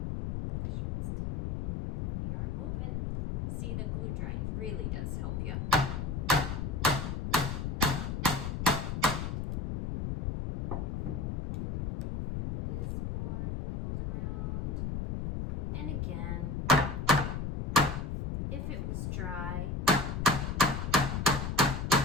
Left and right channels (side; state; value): left; noise; rumble, 3 dB below the sound